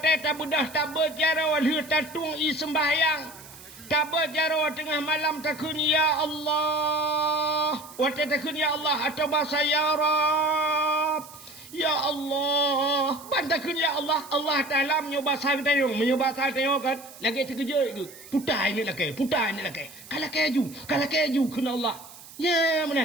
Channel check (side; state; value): right; noise; hiss, 18 dB below the sound